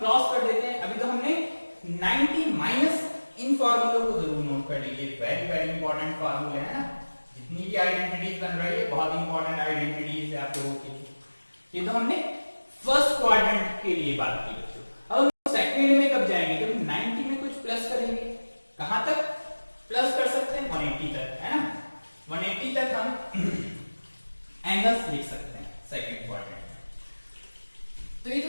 कर देते हैं। अभी तो हमने 90 माइनस, इन फॉर्मूलों को जरूर नोट कर लीजिए, वेरी वेरी इंपॉर्टेंट फॉर्मूले है ना। जितनी भी आइडेंटिटीज बन रही है बहुत इंपॉर्टेंट आइडेंटिटीज है आप लोगों के लिए। ये तो हमने फर्स्ट क्वाड्रेंट के लिए बात की बच्चों। अब हम सेकंड में कब जाएंगे, जब 90 में कुछ प्लस करेंगे, कहां तक प्लस कर सकते हैं, 180 तक। एंगल्स लिख सकते हैं सेकंड क्वाड्रेंट में। तो ये तो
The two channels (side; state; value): both; inverted; correlation -1.00